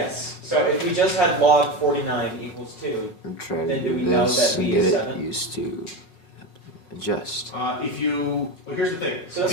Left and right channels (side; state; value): right; late; 5.1 ms